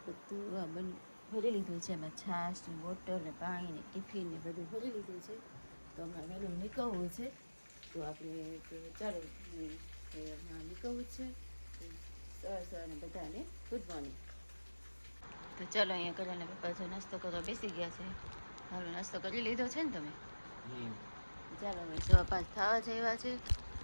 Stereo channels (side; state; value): both; inverted; correlation -1.00